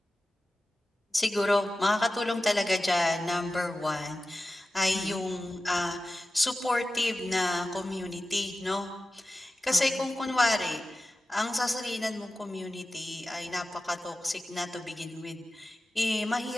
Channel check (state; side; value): normal; both; correlation 0.95